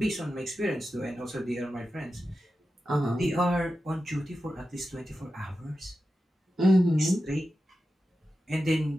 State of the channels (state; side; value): normal; both; correlation 0.92